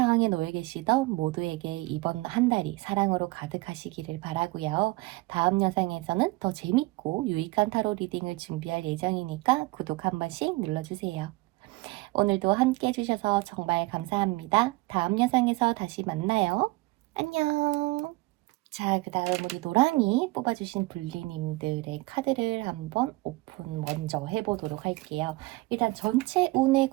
놓여 계시던 모두에게 이번 한 달이 사랑으로 가득하시기를 바라고요. 다음 영상에서는 더 재밌고 유익한 타로 리딩을 준비할 예정이니까 구독 한 번씩 눌러주세요. 오늘도 함께 해주셔서 정말 감사합니다. 다음 영상에서 다시 만나요. 안녕. 자, 그 다음 우리 노랑이 뽑아주신 불리님들의 카드를 한번 오픈 먼저 해보도록 할게요. 일단 전체 운에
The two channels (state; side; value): quieter; left; 22.5 dB